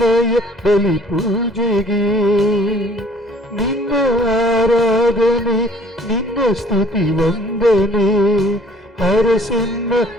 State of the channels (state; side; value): normal; both; correlation 0.55